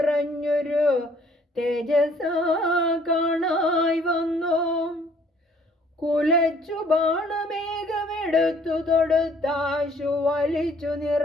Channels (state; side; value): normal; both; correlation 0.60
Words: തേജസാ കാണായി വന്നു. കുലച്ചു ബാണമേഘമെടുത്തു തൊടുത്താശു വലിച്ചു